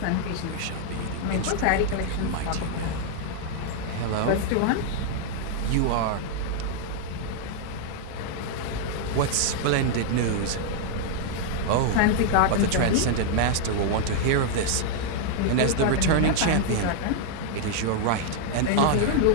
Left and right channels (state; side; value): different; both; correlation 0.00